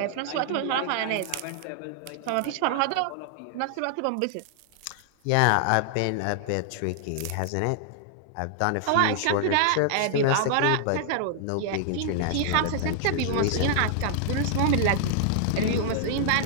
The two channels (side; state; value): both; different; correlation -0.01